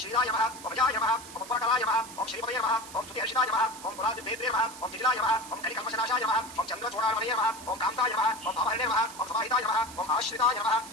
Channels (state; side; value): noise; right; hiss, 15 dB below the sound